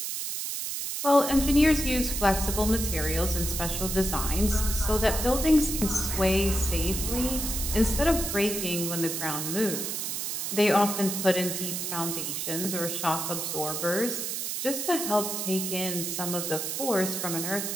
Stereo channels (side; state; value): right; noise; hiss, 3 dB below the sound